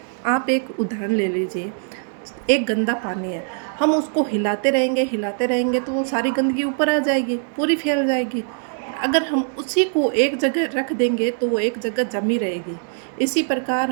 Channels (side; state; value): left; silent; 64 dB below the other